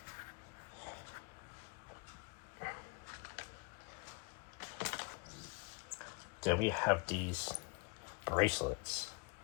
Then we have these bracelets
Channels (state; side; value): quieter; right; 31.3 dB